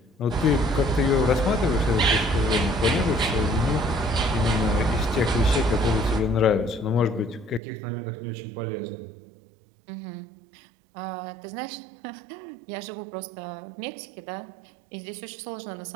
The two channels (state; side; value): drops out; left; at 7.6 s